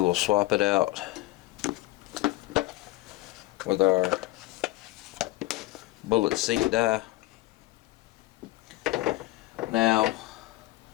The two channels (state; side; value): quieter; right; 18.4 dB